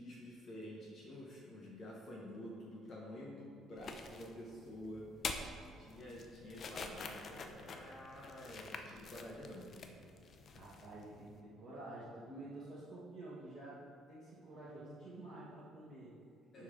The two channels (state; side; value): normal; both; correlation 0.68